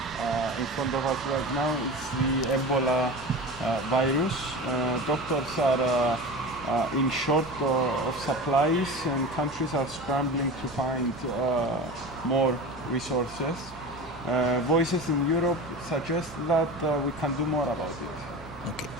in front of us right now is the Ebola virus. Doctors are in short of supplies, and countries are scrambling to find more resources. Voices in Europe suggest that we can do more about it.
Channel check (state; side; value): normal; both; correlation 0.30